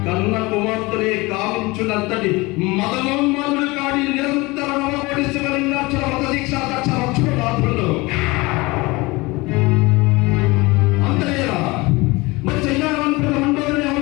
కన్న కుమార్తెనే కావించునంతటి మదమోన్మాదుడు కాడి నిరంతర నవకోటి శివలింగాక్షర మత దీక్ష దక్ష రక్షణ రాత్రులు అంతేనా మరి చైనావంతుల మండలిని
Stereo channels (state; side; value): quieter; right; 23.2 dB